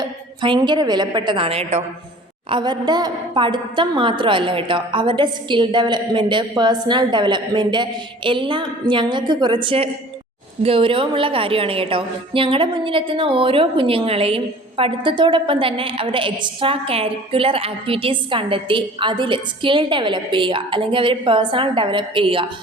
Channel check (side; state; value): both; normal; correlation 0.46